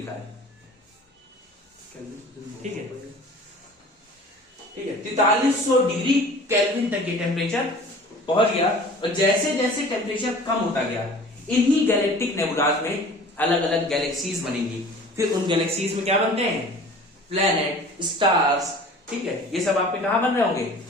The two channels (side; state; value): both; normal; correlation 0.44